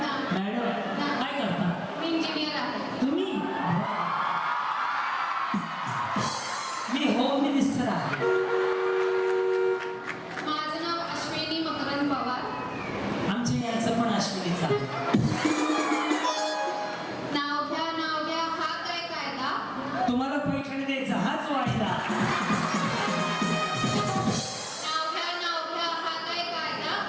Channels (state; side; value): identical; both; correlation 1.00